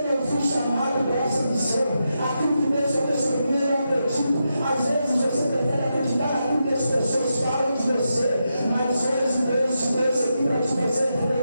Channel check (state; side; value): inverted; both; correlation -0.86